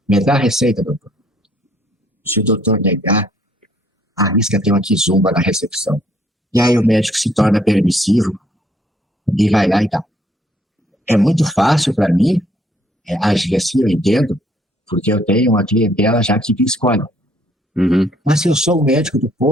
Me dá a receita, doutor. Se o doutor negar, arrisca ter uma quizumba na recepção. E aí o médico se torna permissivo e vai lá e dá. É muito fácil para mim agir assim, eu entendo, porque eu tenho uma clientela já que escolhe. Uhum. Mas se eu sou o médico do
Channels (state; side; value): normal; both; correlation 0.65